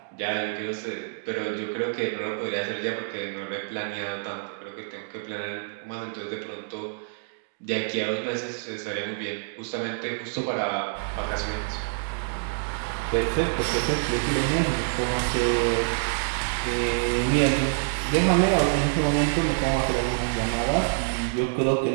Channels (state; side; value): silent; left; digital silence